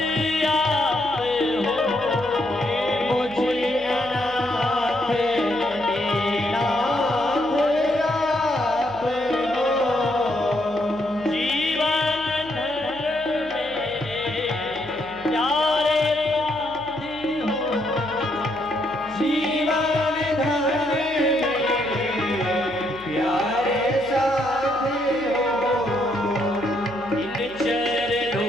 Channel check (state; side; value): noise; right; hum, 21 dB below the sound